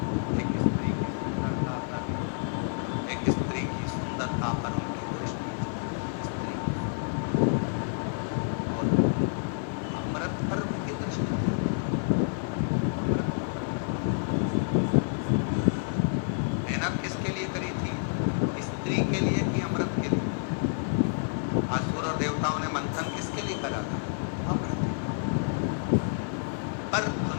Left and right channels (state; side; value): silent; right; digital silence